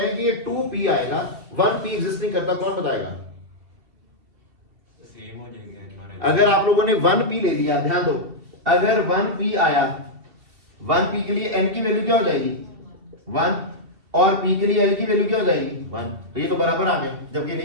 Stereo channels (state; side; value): late; left; 2.7 ms